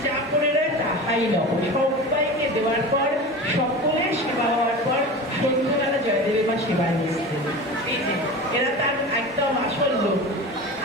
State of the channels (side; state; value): both; normal; correlation 0.31